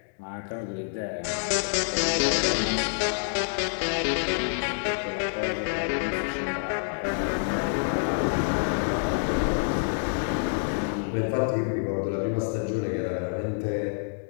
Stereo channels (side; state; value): right; silent; digital silence